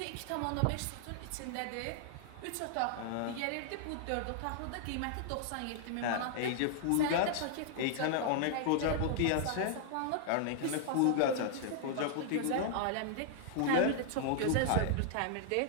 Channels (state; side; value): different; both; correlation 0.00